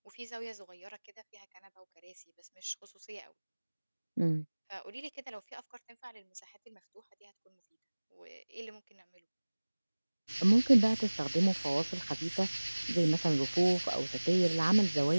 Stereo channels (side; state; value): both; inverted; correlation -1.00